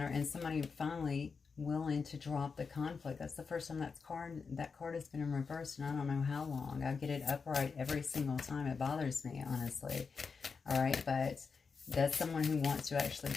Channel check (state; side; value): quieter; right; 5.2 dB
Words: and somebody finally willing to drop the conflict. That's the first time that card has been in reverse, and I don't know how long. I get it upright every single time. It bothers me, honestly. All right, but that's someone who wants to actually